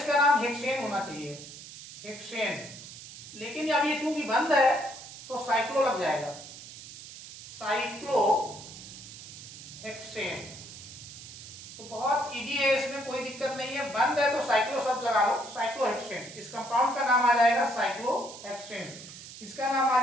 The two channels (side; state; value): right; noise; hiss, 14 dB below the sound